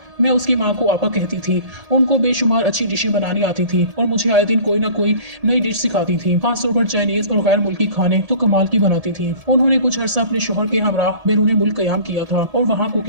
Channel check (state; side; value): late; left; 1.8 ms